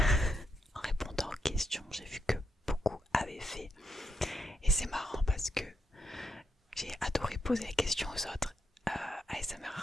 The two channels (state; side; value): normal; both; correlation 0.82